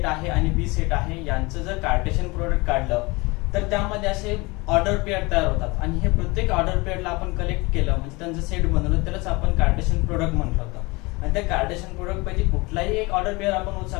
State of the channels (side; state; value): right; quieter; 24.8 dB